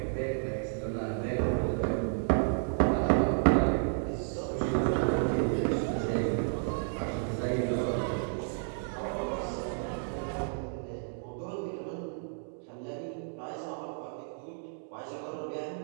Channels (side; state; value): left; silent; digital silence